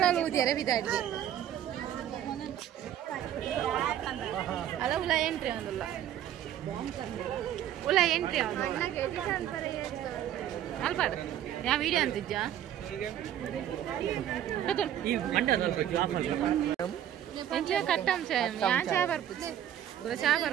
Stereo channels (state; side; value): quieter; left; 11.1 dB